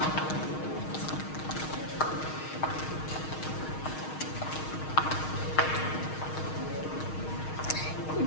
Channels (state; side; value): late; right; 6.4 ms